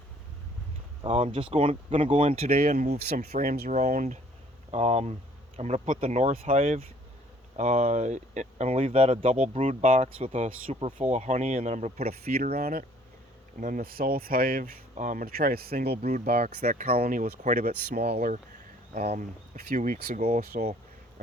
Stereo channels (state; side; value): normal; both; correlation 0.58